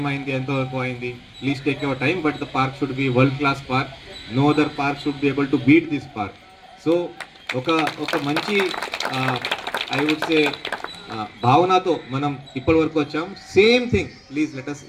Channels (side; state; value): both; identical; correlation 1.00